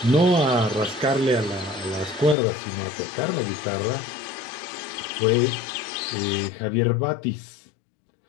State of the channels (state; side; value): drops out; right; at 2.4 s